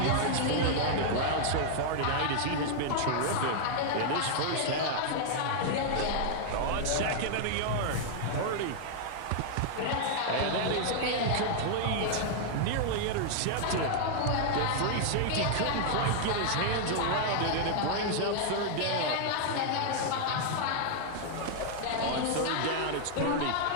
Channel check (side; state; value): both; different; correlation -0.01